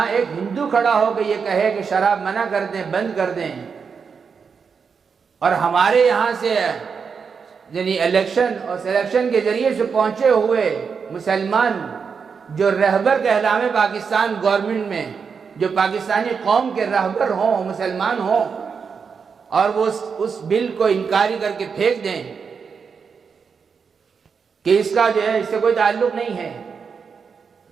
ایک ہندو کھڑا ہو کے یہ کہے کہ شراب منع کر دیں، بند کر دیں، اور ہمارے یہاں سے یعنی الیکشن اور سلیکشن کے ذریعے سے پہنچے ہوئے مسلمان جو رہبر کہلامے پاکستان گورنمنٹ میں، جو پاکستانی قوم کے رہبر ہوں، مسلمان ہوں، اور وہ اس بل کو انکاری کر کے پھینک دیں کہ اس کا جو ہے اس سے کوئی تعلق نہیں ہے،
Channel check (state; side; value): quieter; left; 5.9 dB